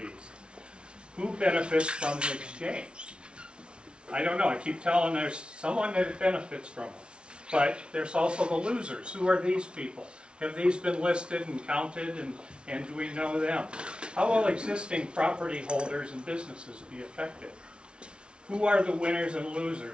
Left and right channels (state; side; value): late; left; 0.057 ms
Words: Who benefits from the exchange? I don't know. I keep telling there's someone that benefits from them. But there's also the losers. Who are these people? Have these been listed and counted, and do we know them? How will existing property holders and businesses be affected? Who are the winners and